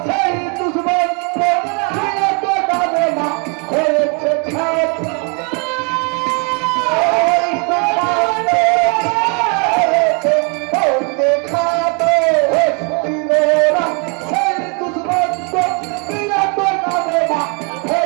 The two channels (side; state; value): left; quieter; 35.4 dB